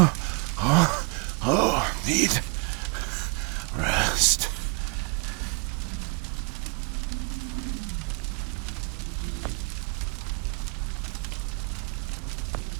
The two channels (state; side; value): quieter; left; 34.0 dB